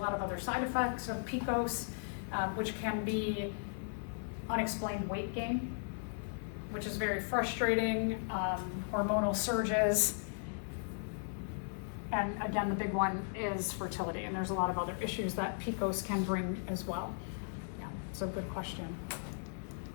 of other side effects of PCOS, which can be unexplained weight gain, which is very frustrating, hormonal surges, and again, the big one is fertility, and there's a lot of other issues that PCOS can bring as well. So good question.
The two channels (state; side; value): silent; right; digital silence